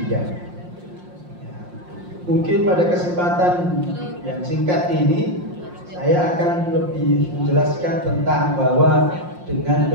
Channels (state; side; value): late; left; 5.6 ms